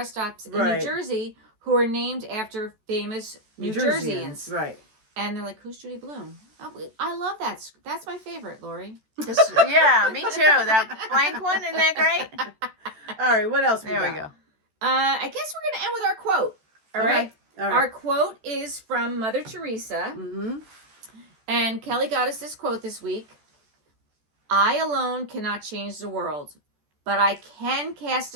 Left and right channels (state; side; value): late; left; 14 ms